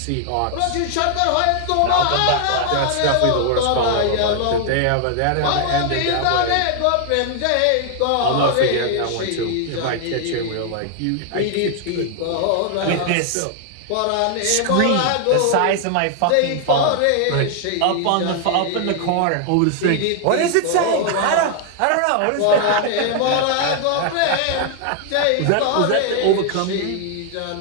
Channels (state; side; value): different; both; correlation 0.00